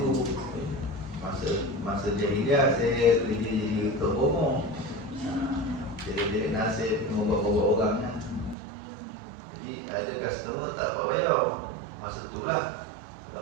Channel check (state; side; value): drops out; left; at 8.6 s